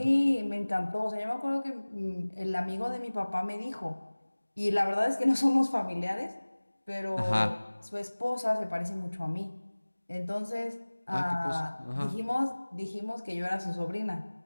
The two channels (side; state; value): both; inverted; correlation -1.00